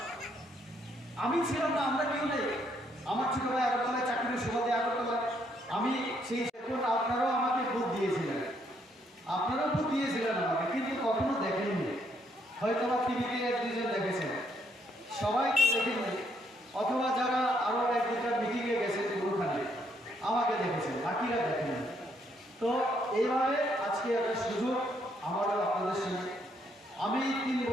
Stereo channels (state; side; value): normal; both; correlation 0.72